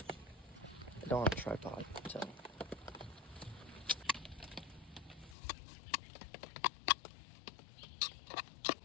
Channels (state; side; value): drops out; right; at 5.4 s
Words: I don't have a tripod, so.